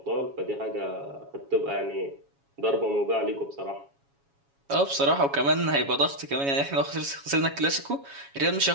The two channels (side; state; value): left; late; 7.2 ms